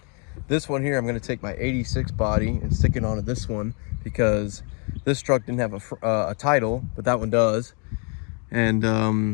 this one here, I'm going to take my 86 body and stick it onto this one because this truck didn't have a title, but that one does. And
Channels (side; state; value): right; quieter; 37.4 dB